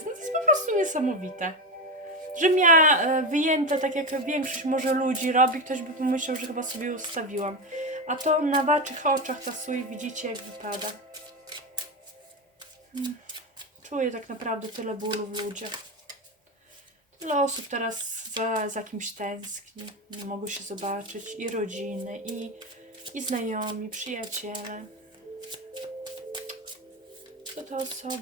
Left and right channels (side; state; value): both; normal; correlation 0.17